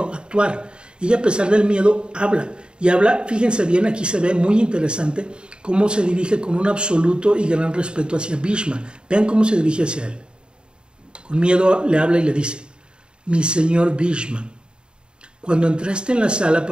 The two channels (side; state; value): left; late; 0.051 ms